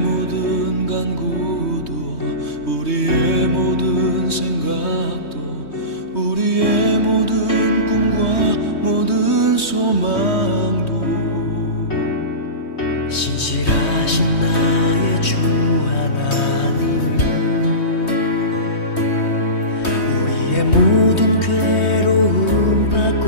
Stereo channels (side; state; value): right; late; 3.2 ms